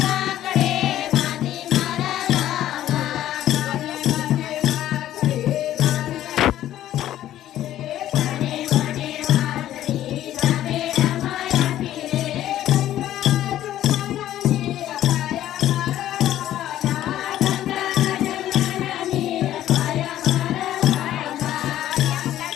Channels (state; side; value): quieter; right; 12.7 dB